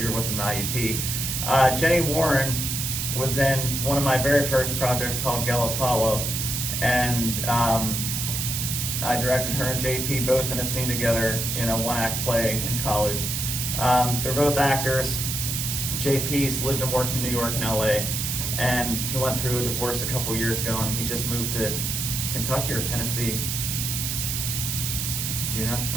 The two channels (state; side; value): noise; right; hiss, 1 dB below the sound